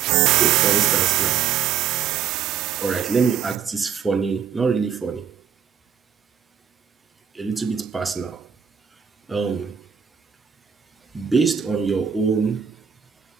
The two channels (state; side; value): quieter; left; 7.7 dB